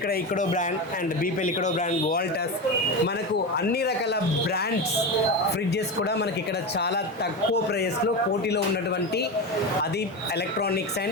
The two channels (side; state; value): both; normal; correlation 0.19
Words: ఇక్కడో బ్రాండ్ అండ్ బీపీఎల్ ఇక్కడో బ్రాండ్, వాల్టస్, మనకు అన్ని రకాల బ్రాండ్స్ ఫ్రిడ్జెస్ కూడా మనకి ఇక్కడ చాలా తక్కువ ప్రైస్లో పోటీలో ఉన్నటువంటి అది ఎలక్ట్రానిక్స్